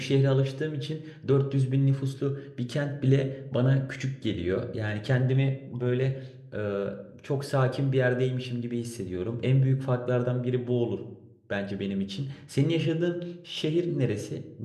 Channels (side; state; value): both; identical; correlation 1.00